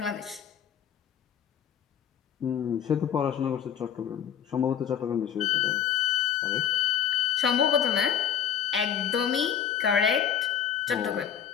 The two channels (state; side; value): quieter; right; 8.8 dB